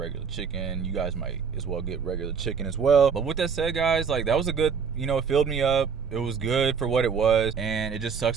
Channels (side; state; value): left; quieter; 6.3 dB